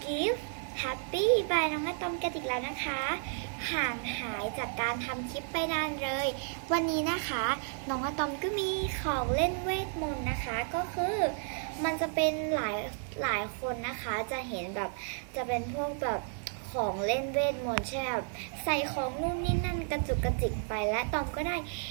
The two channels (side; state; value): left; silent; 56 dB below the other